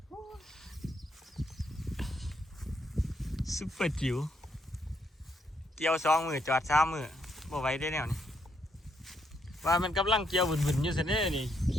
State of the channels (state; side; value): normal; both; correlation 0.75